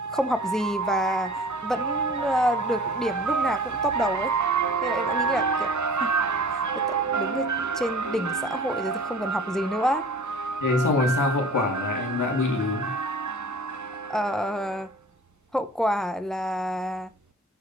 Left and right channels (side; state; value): both; normal; correlation 0.44